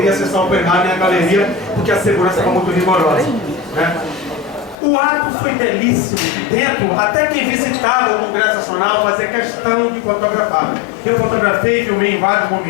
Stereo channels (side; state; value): right; drops out; at 4.8 s